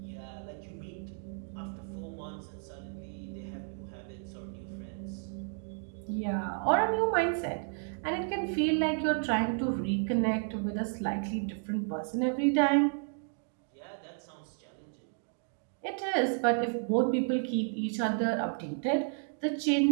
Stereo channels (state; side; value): silent; left; 56 dB below the other